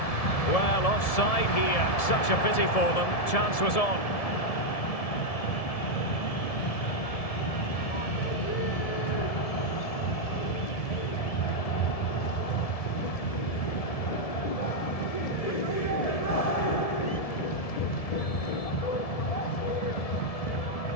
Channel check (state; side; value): late; right; 1.7 ms